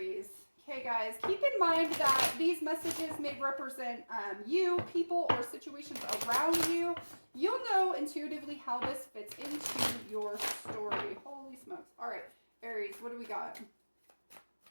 Okay, guys, keep in mind that these messages may represent you, people, or situations around you. You'll know intuitively how this fits into your story. Holy smokes. All right, Aries, what do we got?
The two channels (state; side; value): inverted; both; correlation -1.00